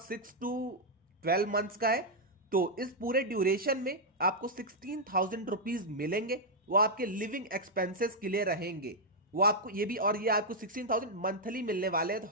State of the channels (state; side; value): normal; both; correlation -0.03